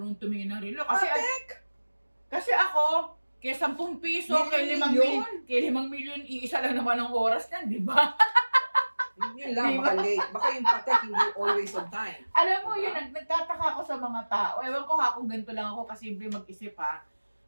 tumingin ng relo. Kasi ako, kaya 10 piso, kay 5 milyon, iisa lang naman ang oras yan, di ba? Yun lang, baka late. Baka yung patek hindi always on time. Alam mo, yun, nagtataka ako sa mga tao. Ewan ko kung ganito lang ako kasimple mag-isip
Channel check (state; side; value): inverted; both; correlation -1.00